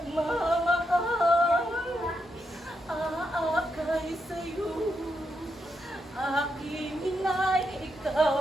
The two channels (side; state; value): both; normal; correlation 0.83